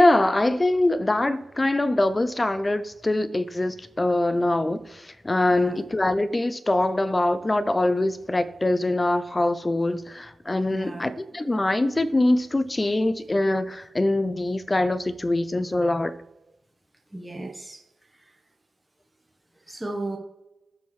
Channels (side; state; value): both; normal; correlation 0.98